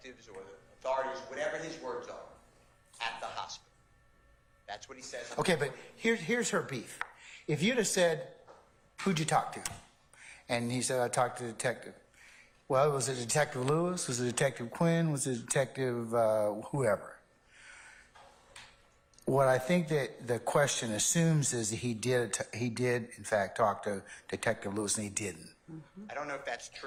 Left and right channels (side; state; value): both; identical; correlation 1.00